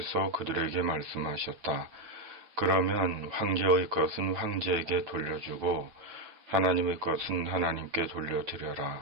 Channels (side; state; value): left; late; 8.9 ms